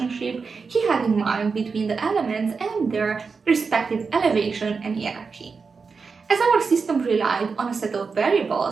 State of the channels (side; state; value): left; quieter; 5.0 dB